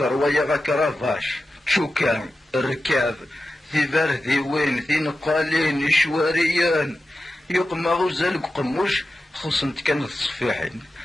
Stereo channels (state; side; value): normal; both; correlation 0.93